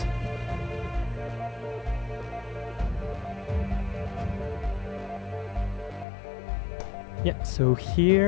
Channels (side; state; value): right; drops out; at 6.1 s